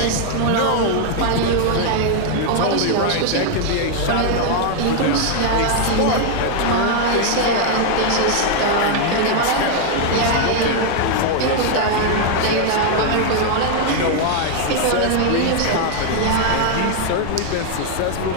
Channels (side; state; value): both; different; correlation 0.00